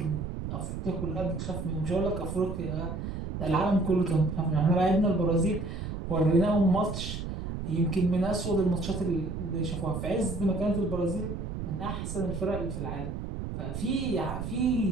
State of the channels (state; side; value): noise; right; rumble, 5 dB below the sound